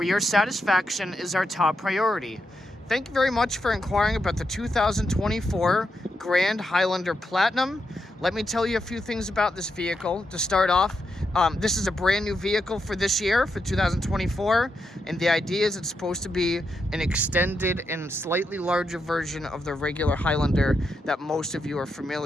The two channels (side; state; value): both; normal; correlation 0.84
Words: your satisfaction is our top priority. Thank you very much for inquiring about the 2024 Grand Highlander Platinum. Let me tell you a few things about this vehicle. To start off, this is a brand new vehicle for this year, for 2024, and the idea is it's supposed to be an extended and slightly larger version of the regular Highlander that most of you are